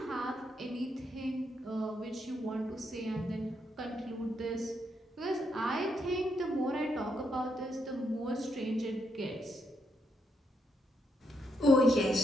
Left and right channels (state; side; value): normal; both; correlation 0.78